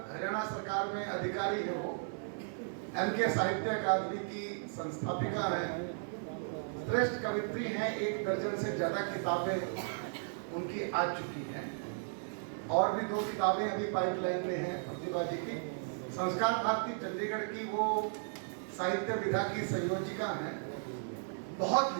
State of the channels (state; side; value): silent; left; digital silence